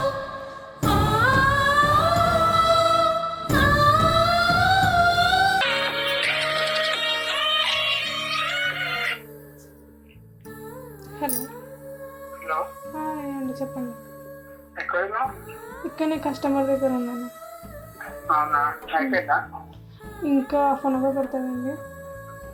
హలో. హలో, అండి చెప్పండి. ఎక్కడున్నా? ఇక్కడనే కస్టమర్ దగ్గర ఉన్నాను. అవునా, అయిపోయిందా? ఇంకా హాఫ్ అన్ అవర్ పడుతుందండి.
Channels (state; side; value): identical; both; correlation 1.00